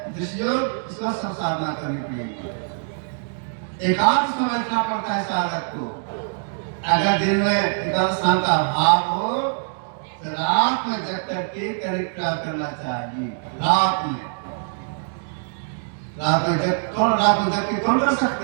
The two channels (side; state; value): left; silent; digital silence